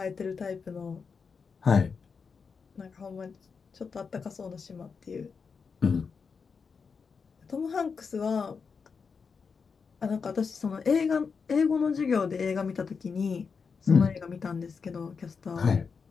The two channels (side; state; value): right; quieter; 5.5 dB